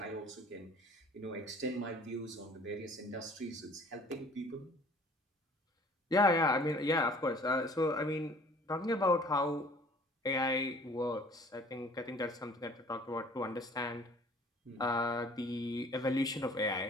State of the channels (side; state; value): both; normal; correlation 0.52